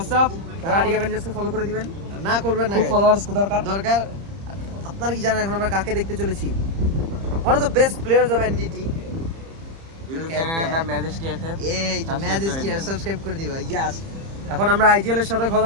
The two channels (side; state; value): left; late; 30 ms